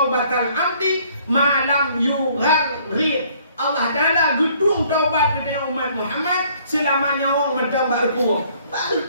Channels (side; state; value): both; inverted; correlation -0.61